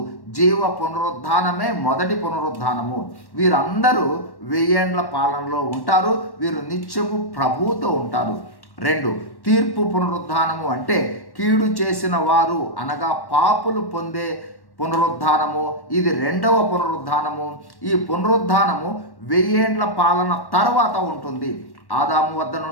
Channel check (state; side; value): late; right; 1.1 ms